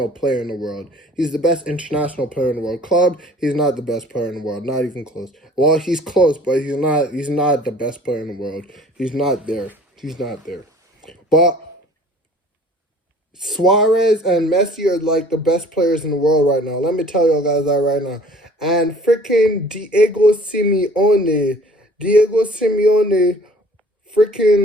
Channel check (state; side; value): normal; both; correlation 0.50